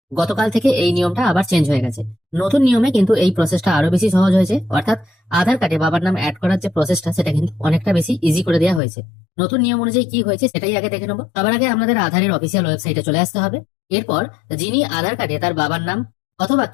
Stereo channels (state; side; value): drops out; right; at 8.8 s